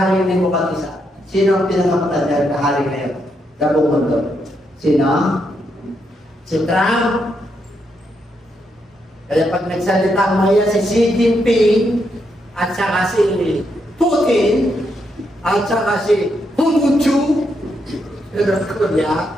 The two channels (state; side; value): normal; both; correlation 0.80